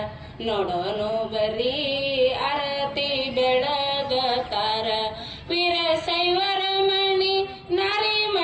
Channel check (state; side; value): identical; both; correlation 1.00